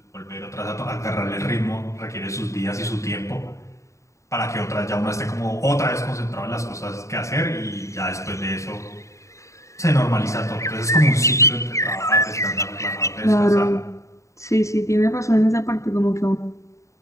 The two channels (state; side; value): late; right; 0.15 ms